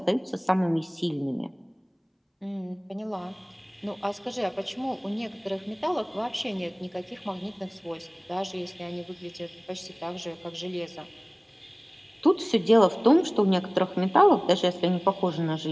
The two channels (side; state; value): both; identical; correlation 1.00